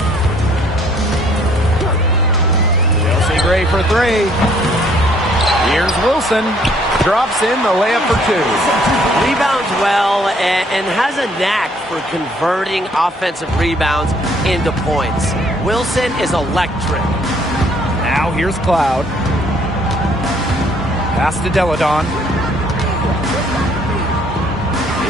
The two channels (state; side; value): normal; both; correlation 0.62